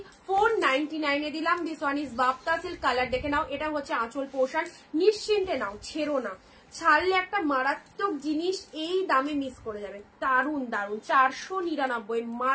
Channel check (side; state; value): both; identical; correlation 1.00